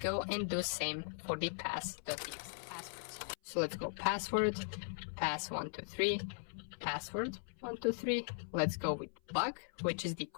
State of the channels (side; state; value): right; silent; 52 dB below the other